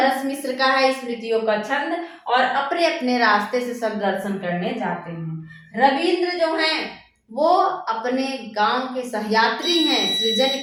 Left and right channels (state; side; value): identical; both; correlation 1.00